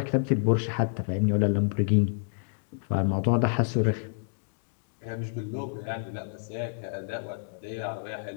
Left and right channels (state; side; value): silent; right; digital silence